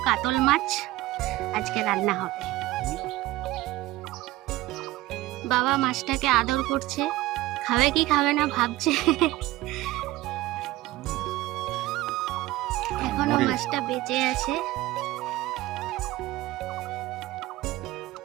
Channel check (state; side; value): quieter; left; 17.8 dB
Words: কাতল মাছ আজকে রান্না হবে। বাবা মাছটাকে আদর করছে, খাবে কি খাবে না ভাবছে। এখনো মাছটা বেঁচে আছে।